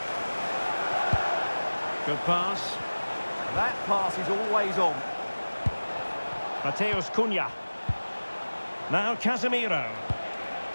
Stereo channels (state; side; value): inverted; both; correlation -1.00